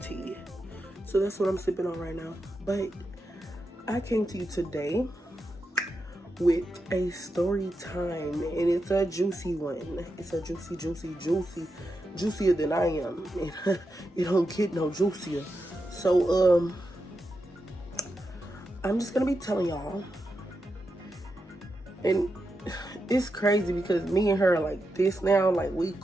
tea. So that's what I'm sipping on right now. But I came to you today with a story time, and it's a juicy one. It's a juicier than I am. It don't get no juicier. So I'm just gonna be telling y'all, and it's crazy because me and her are like this now, like we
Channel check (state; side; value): normal; both; correlation 0.87